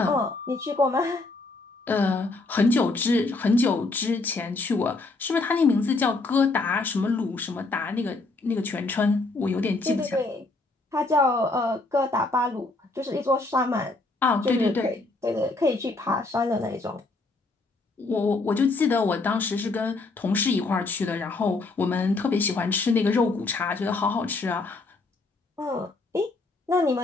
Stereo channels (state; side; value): quieter; right; 3.4 dB